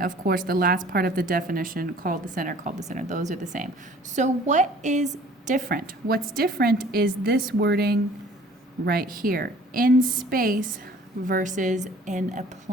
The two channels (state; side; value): normal; both; correlation 0.51